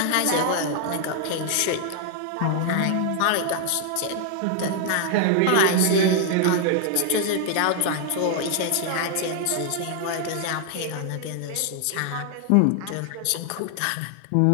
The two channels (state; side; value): different; both; correlation 0.00